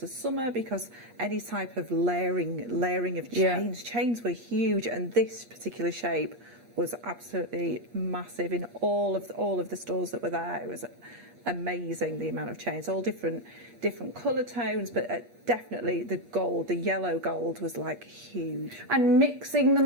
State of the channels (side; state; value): left; late; 8.6 ms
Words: the summer, because any type of layering of chains were huge, and this particular shape was absolutely massive in all of the stores that were there. It was amazing, the amount of chains, all different colour tones, but definitely the yellow gold was like huge. And mixing the